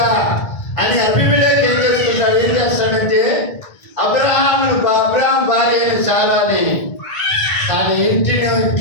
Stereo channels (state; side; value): late; right; 1.5 ms